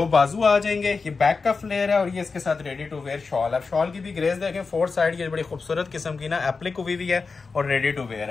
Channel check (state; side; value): quieter; right; 4.5 dB